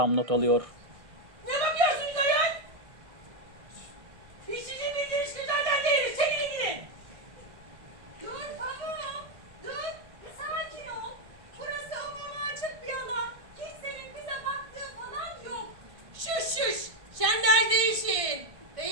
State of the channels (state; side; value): late; left; 1.5 ms